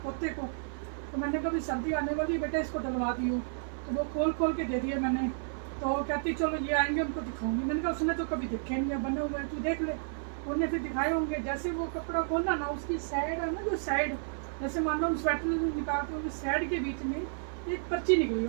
पोते को, तो मैंने कभी सर्दी आने वाली है बेटा, इसको डलवा दियो। तो वो खोल खोल के दे दिया मैंने। तो कहती चलो ये आएंगे उनको दिखाऊंगी। मैंने कहा उसने तो कभी देखे नहीं है, बने हुए है, तू देख ले। उन्होंने फिर दिखाए होंगे। जैसे वो कपड़ा खोलना ना, उसकी साइड है ना, जो साइड, जैसे मान लो हम स्वेटर निकालते हैं, साइड के बीच में एक पर्ची निकली है,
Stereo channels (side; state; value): left; silent; 57 dB below the other